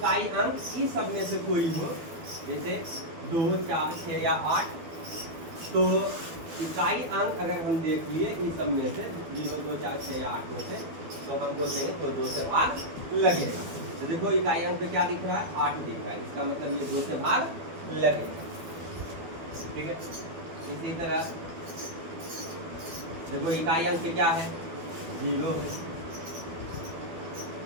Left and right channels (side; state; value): left; late; 12 ms